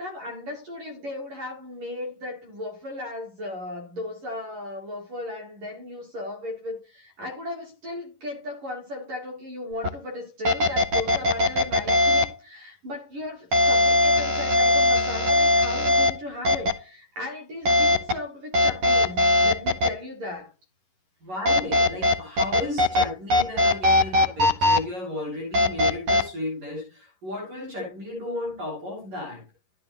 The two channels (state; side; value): late; left; 11 ms